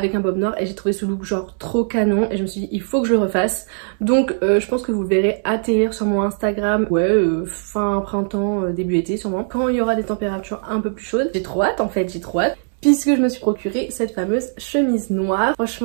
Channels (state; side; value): silent; left; digital silence